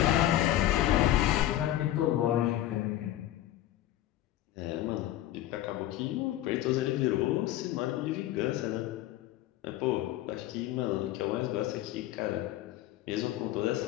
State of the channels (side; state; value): right; quieter; 13.7 dB